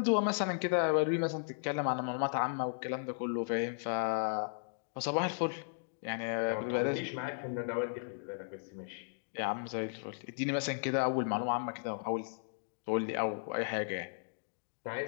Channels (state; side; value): silent; right; digital silence